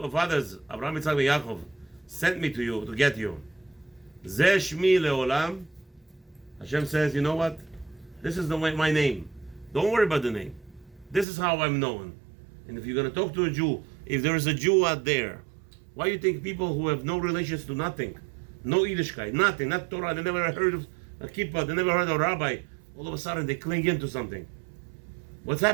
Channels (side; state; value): left; drops out; at 11.2 s